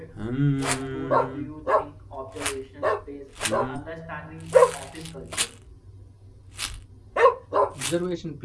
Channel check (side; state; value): both; identical; correlation 1.00